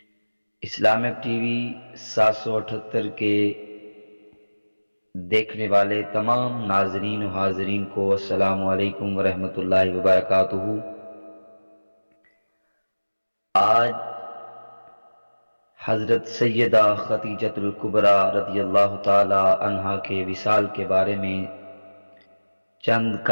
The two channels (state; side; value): inverted; both; correlation -1.00